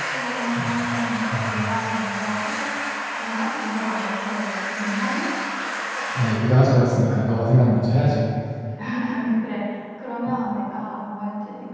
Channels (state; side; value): identical; both; correlation 1.00